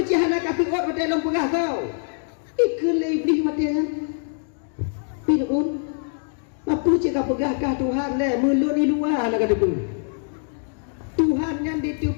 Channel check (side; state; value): right; silent; digital silence